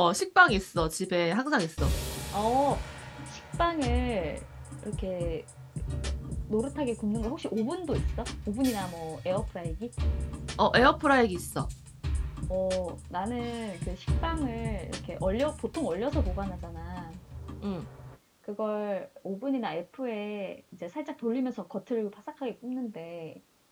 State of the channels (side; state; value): both; identical; correlation 1.00